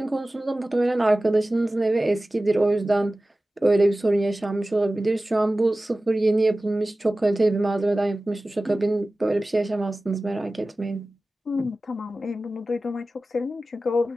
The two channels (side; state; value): both; normal; correlation 0.96